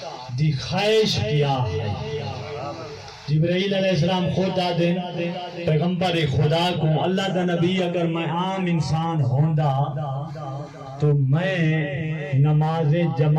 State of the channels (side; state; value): both; identical; correlation 1.00